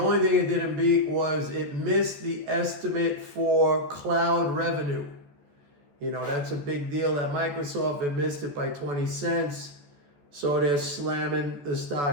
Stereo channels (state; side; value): late; left; 14 ms